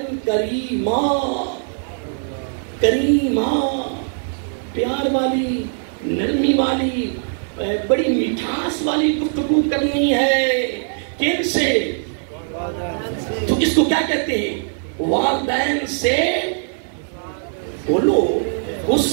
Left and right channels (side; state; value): left; silent; digital silence